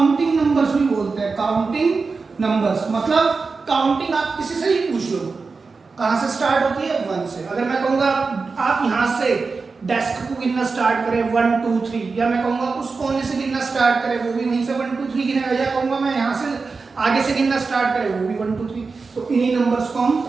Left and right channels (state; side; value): quieter; left; 4.4 dB